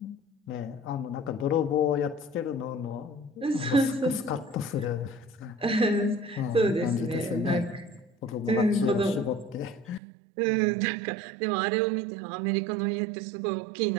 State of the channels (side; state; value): left; drops out; at 10.0 s